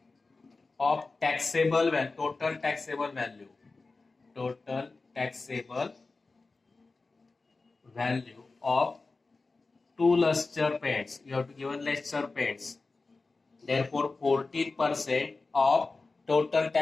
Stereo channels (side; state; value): right; quieter; 3.7 dB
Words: of taxable value, total taxable value. Total taxable value of 2 luster paints. You have to give luster paints. Therefore, 14% of total